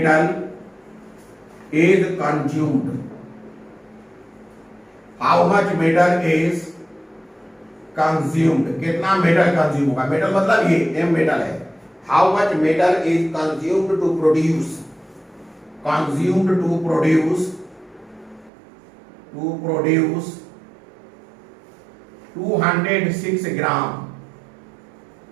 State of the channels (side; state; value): left; drops out; at 18.5 s